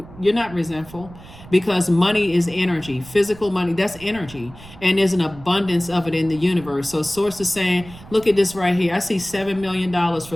You're not resentful. Because money is energy, physical money, that's energy. And there's an abundance of it in the universe. So source is saying, look at this right here. I see $7 million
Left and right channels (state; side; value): noise; right; rumble, 19 dB below the sound